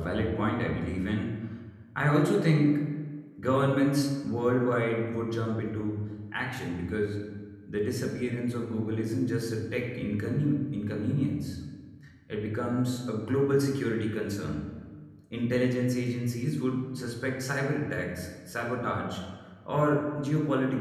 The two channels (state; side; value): identical; both; correlation 1.00